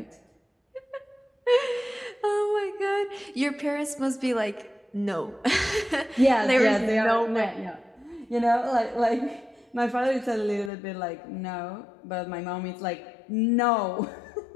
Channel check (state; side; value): drops out; right; at 10.7 s